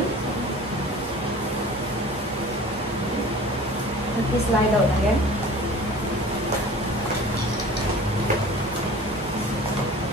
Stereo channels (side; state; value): both; normal; correlation 0.43